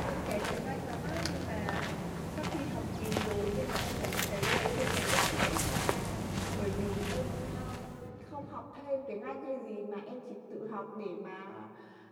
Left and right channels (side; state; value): both; identical; correlation 1.00